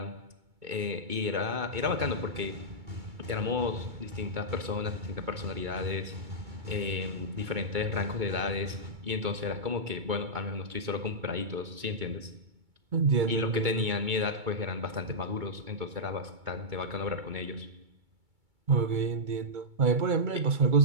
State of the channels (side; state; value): left; late; 2.3 ms